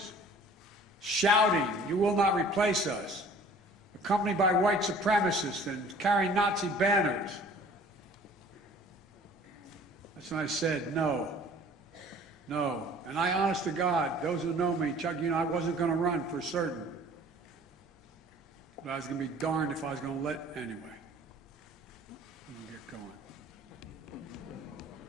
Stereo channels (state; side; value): normal; both; correlation 0.50